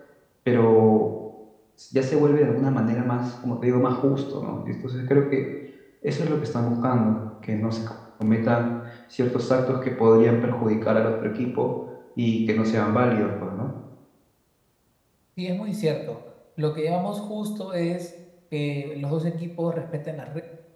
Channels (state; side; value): identical; both; correlation 1.00